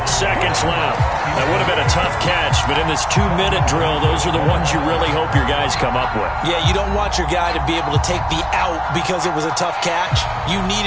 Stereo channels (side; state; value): both; identical; correlation 1.00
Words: seconds left. That would have been a tough catch, but in this 2-minute drill, those are the ones you really hope your guys come up with. Yeah, you don't want your guy to be able to take the out because it was a tough catch. You